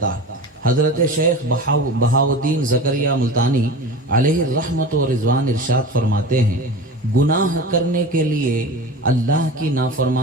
ہے۔ حضرت شیخ بہاؤالدین زکریا ملتانی علیہ الرحمت و رضوان ارشاد فرماتے ہیں، گناہ کرنے کے لیے، اللہ کی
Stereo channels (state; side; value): normal; both; correlation 0.32